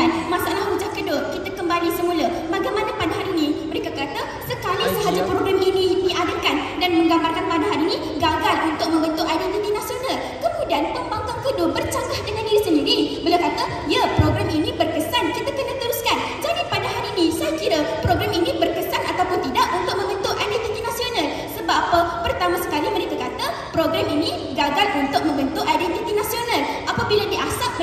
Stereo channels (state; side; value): identical; both; correlation 1.00